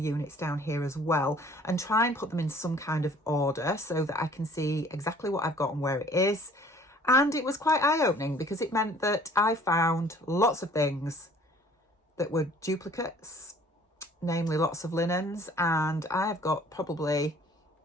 down here as well, and try and put them in some kind of order so that I can see exactly what I've got and where it is. And it was quite eye-opening because it meant that I found lots of things that were duplicates, namely lots of linens, and I have got probably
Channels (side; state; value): both; normal; correlation 0.54